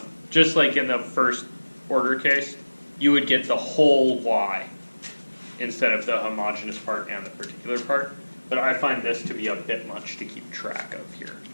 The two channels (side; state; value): both; inverted; correlation -1.00